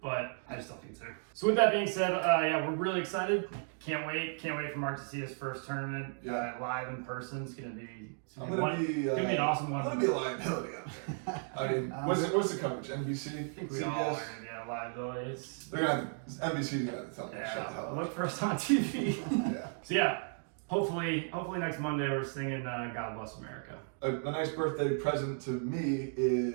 but I just don't think it's there. So with that being said, yeah, we're really excited. Can't wait for Mark to see his first tournament live in person. It's gonna be an awesome one. I'm gonna be a liability out there. I mean, what's the coverage? NBC? I think we all are gonna be a liability. NBC's gonna have to tell me to shut the hell up. Look for us on TV. Yeah. So yeah, hopefully next Monday we're singing "God Bless America." A nice birthday present to me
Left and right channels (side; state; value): left; silent; 55 dB below the other